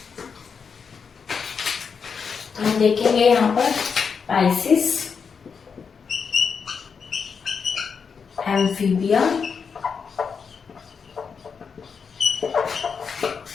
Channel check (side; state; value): right; quieter; 6.0 dB